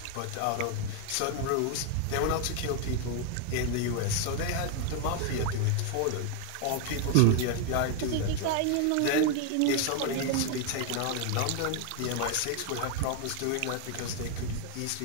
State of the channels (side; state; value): both; different; correlation 0.01